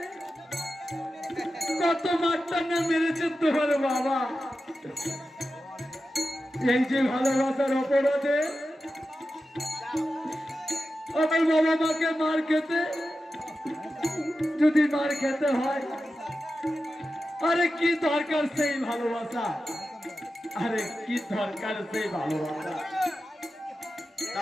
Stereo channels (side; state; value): both; normal; correlation 0.92